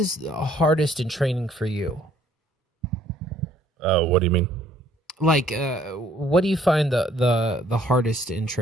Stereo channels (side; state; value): both; normal; correlation 0.62